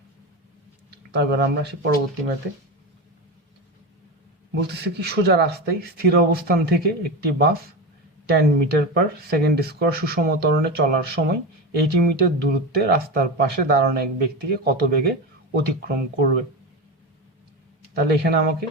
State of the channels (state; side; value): normal; both; correlation 0.21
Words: তারপর আমরা আসি পরবর্তী ম্যাথে। বলতেছে কি, সোজা রাস্তায় স্থির অবস্থান থেকে একটি বাস 10 মিটার পার সেকেন্ড স্কোয়ার সুষম ত্বরণে চলার সময় 80 মিটার দূরত্বে রাস্তার পাশে দাঁড়ানো এক ব্যক্তিকে কত বেগে অতিক্রম করবে। তাহলে এখানে আমাকে